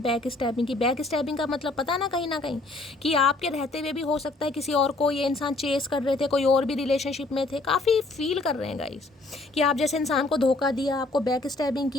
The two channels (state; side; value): quieter; right; 3.1 dB